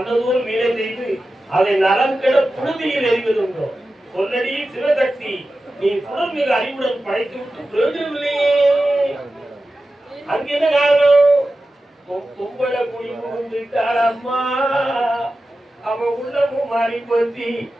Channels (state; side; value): normal; both; correlation 0.93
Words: வீணை செய்து அதை நலம் கெட புழுதியில் எறிவதுண்டோ சொல்லடி சிவசக்தி நீ சுடர் மிக அறிவுடன் படைத்து விட்டு பிரயோஜனம் இல்லையே. அங்க என்ன காரணம்? கும்பல குடி புகுந்துட்டாளம்மா. அவன் உள்ளமும் மாறி போச்சு,